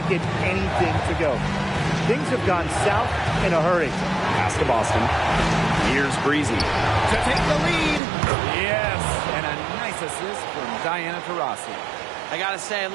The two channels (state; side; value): drops out; left; at 8.0 s